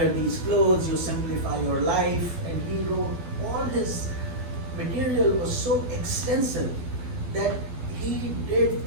these clothes, you simplify your life, and he wrote, all his material was so extensive that he did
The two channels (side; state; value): left; late; 12 ms